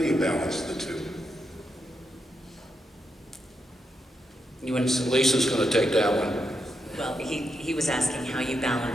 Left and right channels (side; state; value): both; normal; correlation 0.83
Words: you balance the two? Lisa's going to take that one. Well, he was asking how you